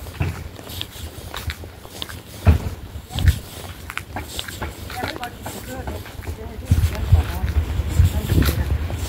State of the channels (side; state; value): both; identical; correlation 1.00